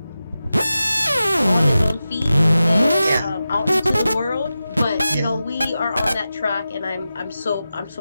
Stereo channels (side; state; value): both; inverted; correlation -0.93